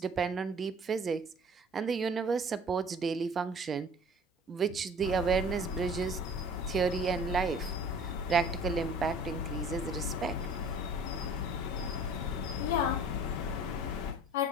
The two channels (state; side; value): normal; both; correlation 0.47